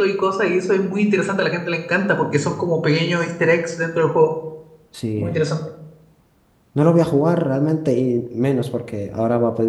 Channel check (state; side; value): identical; both; correlation 1.00